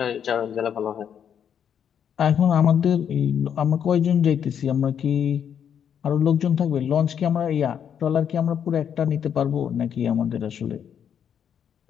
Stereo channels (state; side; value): quieter; right; 8.4 dB